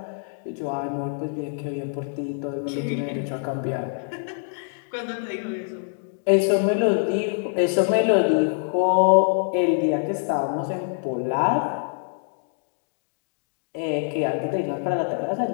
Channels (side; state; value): right; silent; digital silence